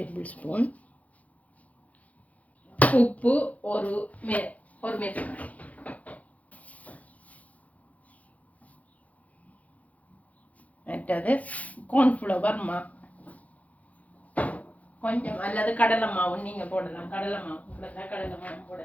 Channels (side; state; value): right; late; 0.070 ms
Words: ஸ்பூன், உப்பு ஒரு மேசக்கரண்டி, மற்றது கார்ன்ஃப்ளவர் கொஞ்சம், அல்லது கடலை மாவு நீங்க போடலாம். கடலை மாவு